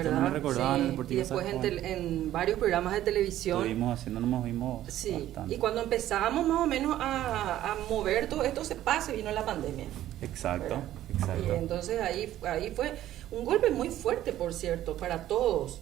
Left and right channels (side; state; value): left; quieter; 13.1 dB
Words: no me recordaba sí. en el Deportivo Sajonia. Y después en varios programas de televisión. Estuvimos haciendo, nos movimos sí. bastante. Y cuando empezábamos más o menos a mover todo esto, se vino la pandemia. Exacto, ¿verdad? exacto. Y entonces ahí fue un golpe muy fuerte, por cierto, para